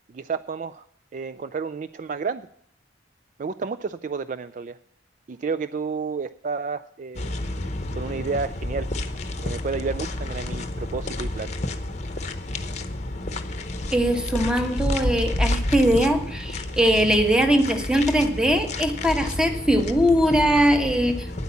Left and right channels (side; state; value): both; normal; correlation 0.75